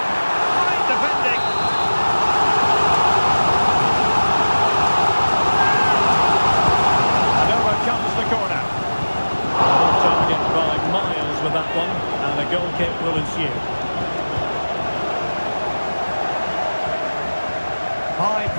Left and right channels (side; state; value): both; inverted; correlation -1.00